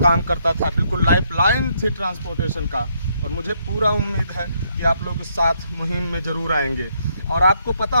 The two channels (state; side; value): inverted; both; correlation -0.74